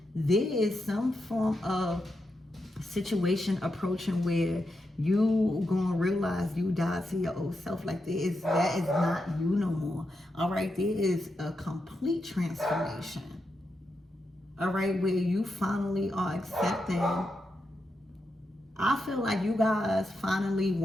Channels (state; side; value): normal; both; correlation 0.86